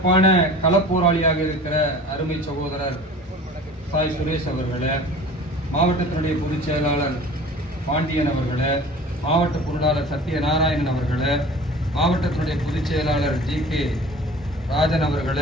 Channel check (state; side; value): normal; both; correlation 0.42